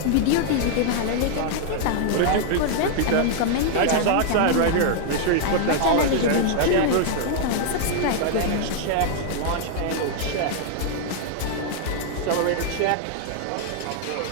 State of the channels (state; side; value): different; both; correlation 0.00